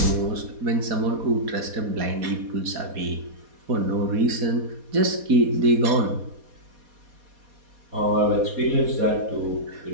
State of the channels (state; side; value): late; left; 4.2 ms